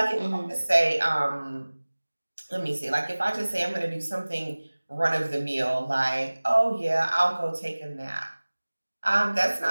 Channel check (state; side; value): inverted; both; correlation -1.00